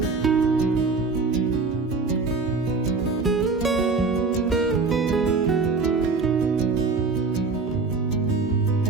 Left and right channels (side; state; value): left; quieter; 4.2 dB